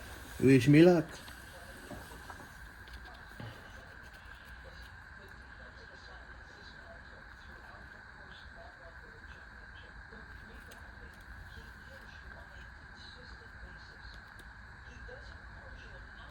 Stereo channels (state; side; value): identical; both; correlation 1.00